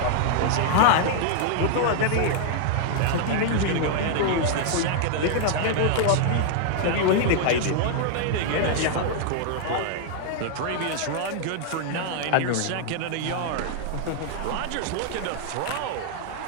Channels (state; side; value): different; both; correlation 0.00